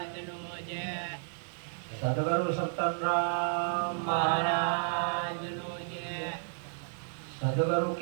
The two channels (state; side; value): silent; left; 56 dB below the other